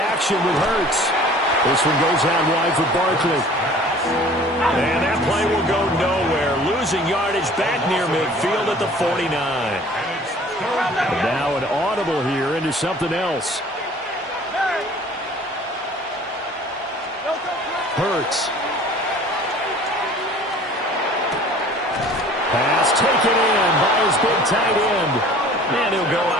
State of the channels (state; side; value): normal; both; correlation 0.49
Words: with Hurts. This one goes out wide for Barkley. And that play will go nowhere. Losing yardage back near midfield at the 49. And now an audible here into something else. Hurts. Pass taken in by his big tight end. And he'll go